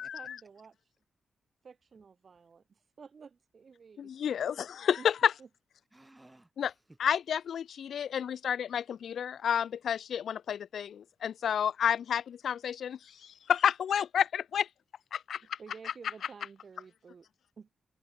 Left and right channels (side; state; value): right; quieter; 8.2 dB